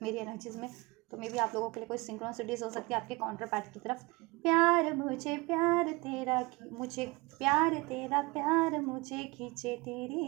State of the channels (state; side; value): quieter; left; 24.0 dB